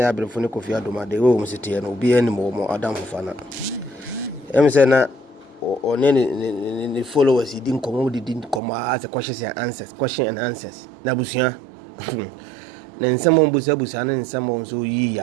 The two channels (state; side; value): drops out; left; at 8.6 s